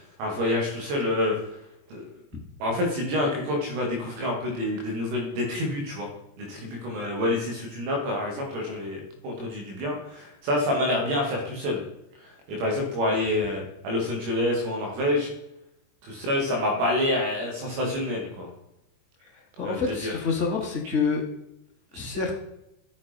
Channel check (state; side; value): late; left; 21 ms